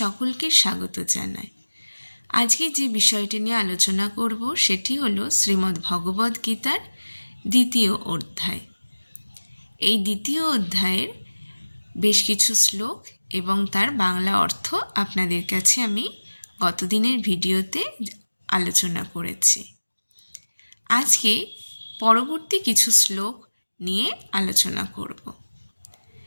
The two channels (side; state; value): both; inverted; correlation -1.00